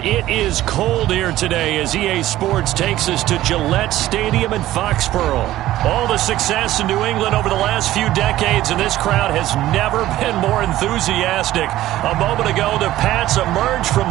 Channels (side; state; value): left; quieter; 14.8 dB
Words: it is cold here today as EA Sports takes us to Gillette Stadium in Foxborough. All the success in New England over the last few decades, and this crowd has never been more enthusiastic. A moment ago, the Pats emerged from